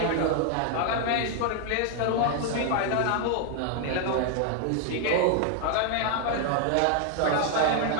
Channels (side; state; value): both; different; correlation 0.00